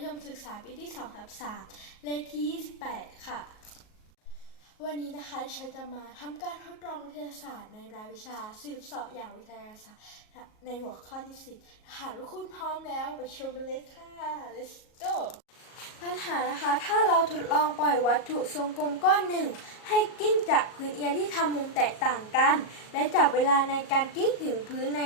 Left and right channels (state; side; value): late; right; 38 ms